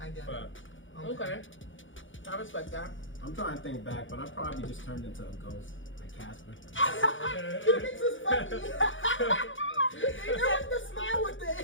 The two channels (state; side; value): late; right; 0.56 ms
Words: get it. Okay. I respect that. I'm trying to think back, but I probably just turned into a ghost, like Casper. You think this is funny? It was the smile with